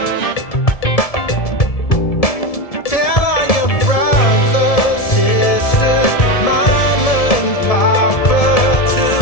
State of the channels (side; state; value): right; late; 1.7 ms